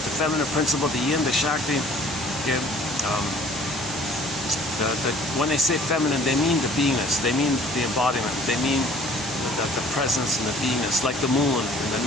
the feminine principle, the yin, the shakti. Okay. When they say feminine, they mean the beingness, they mean the embodiment, they mean the presence and the beingness, like the moon in the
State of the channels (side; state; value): both; normal; correlation 0.53